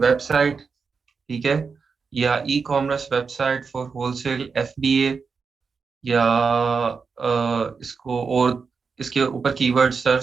ठीक है, या e commerce website for wholesale FBA, या इसको और इसके ऊपर कीवर्ड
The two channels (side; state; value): left; quieter; 5.3 dB